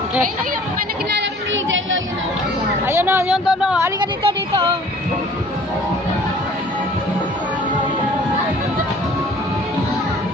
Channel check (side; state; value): both; normal; correlation 0.51